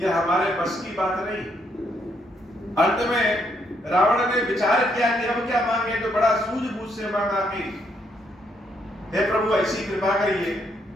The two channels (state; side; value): normal; both; correlation 0.74